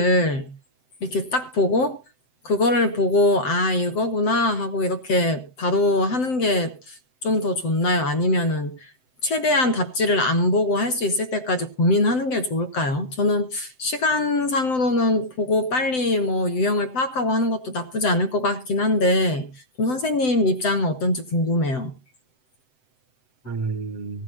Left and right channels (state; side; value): late; right; 7.8 ms